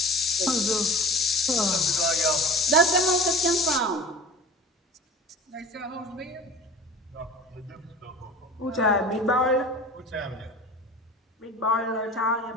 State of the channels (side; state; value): both; normal; correlation 0.37